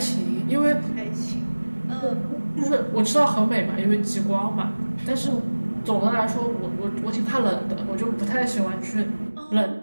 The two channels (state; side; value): inverted; both; correlation -1.00